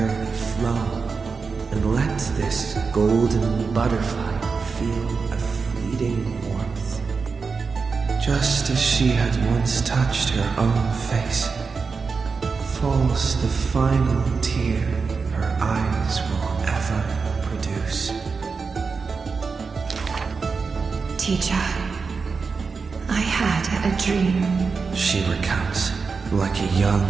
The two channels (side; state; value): left; quieter; 4.9 dB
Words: flow and let this golden butterfly feel a fleeting warmth. Just as she had once touched her own face, falls the final tear her eyes will ever produce. Teacher, I had a dream. She recounts, like a